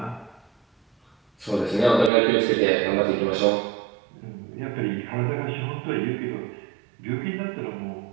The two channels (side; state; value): left; drops out; at 2.1 s